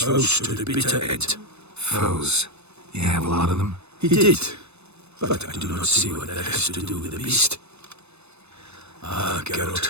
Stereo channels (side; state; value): left; late; 0.81 ms